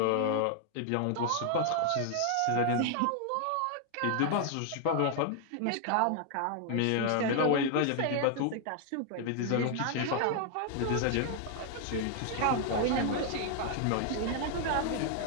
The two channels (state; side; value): different; both; correlation 0.00